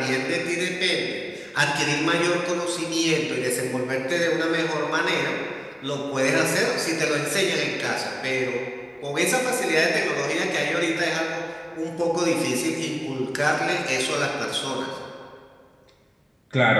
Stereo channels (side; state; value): both; identical; correlation 1.00